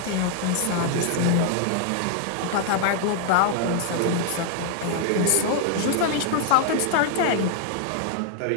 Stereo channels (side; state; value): both; different; correlation 0.00